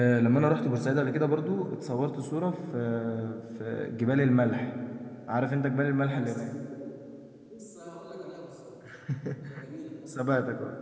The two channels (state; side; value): identical; both; correlation 1.00